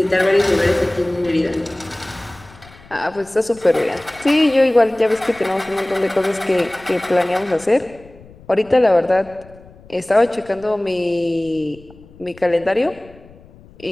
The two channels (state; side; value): noise; left; rumble, 23 dB below the sound